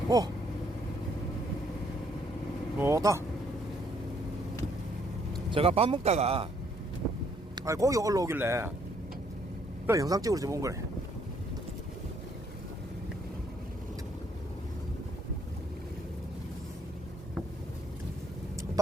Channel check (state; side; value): normal; both; correlation 0.68